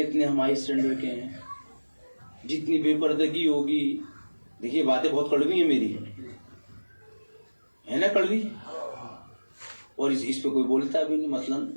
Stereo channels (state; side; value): inverted; both; correlation -1.00